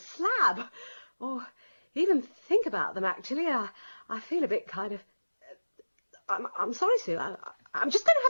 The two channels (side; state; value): both; inverted; correlation -1.00